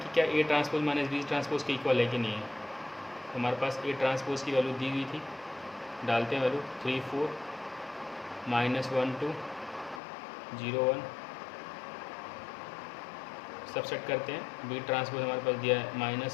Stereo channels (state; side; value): drops out; right; at 10.0 s